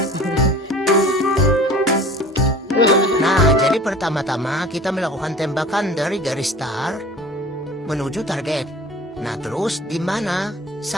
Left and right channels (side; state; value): both; normal; correlation 0.43